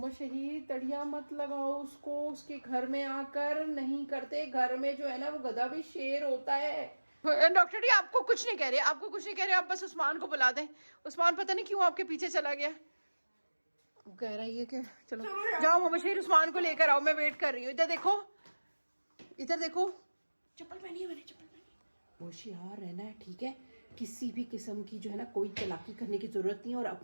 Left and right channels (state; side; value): inverted; both; correlation -1.00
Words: शहीद तड़िया मत लगाओ उसको, उसके घर में आकर नहीं करते। घर में जो है ना वो गधा भी शेर होता है। डॉक्टर जी आपको कुछ नहीं कह रहे, आपको कुछ नहीं कह रहे, आप बस उस्मान को बुला दें। उस्मान पता नहीं क्यों आपके पीछे चला गया, कह रहा है ये कि चलो जाओ मोहम्मद शहीद, उस्मान को लेकर आओ, मैं वेट कर रही हूँ। इधर देखो, इधर देखो, चप्पल पहनी है मैंने, चप्पल पहनी है। होशियार रहना है, ठीक है? किसी भी किस्म की जो है ना कोई चालाकी करने की जरूरत नहीं है, और